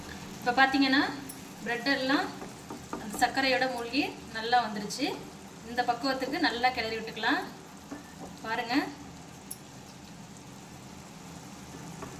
இப்போ பார்த்தீங்கன்னா ப்ரெட் எல்லாம் அந்த சர்க்கரையோட மூழ்கி நல்லா வந்துருச்சு. இந்த பக்குவத்துக்கு நல்லா கிளறி விட்டுக்கலாம். பாருங்கள்.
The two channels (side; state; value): both; identical; correlation 1.00